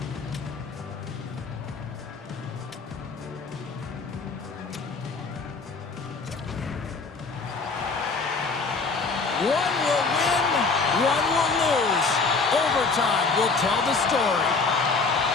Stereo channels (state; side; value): quieter; right; 4.3 dB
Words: One will win, one will lose. Overtime will tell the story.